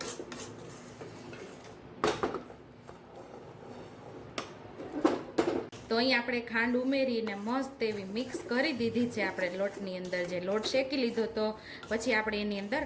તો અહીં આપણે ખાંડ ઉમેરીને મસ્ત એવી મિક્સ કરી દીધી છે આપણે લોટની અંદર। જે લોટ શેકી લીધો તો પછી આપણે એની અંદર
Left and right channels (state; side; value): identical; both; correlation 1.00